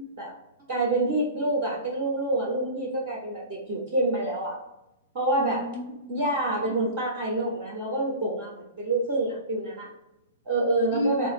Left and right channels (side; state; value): both; inverted; correlation -0.34